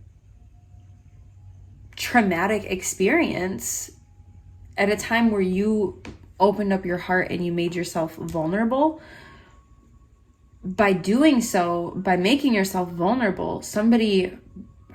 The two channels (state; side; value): identical; both; correlation 1.00